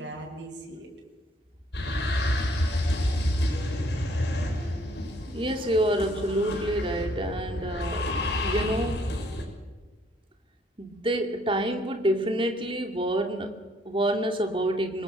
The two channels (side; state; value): both; normal; correlation 0.65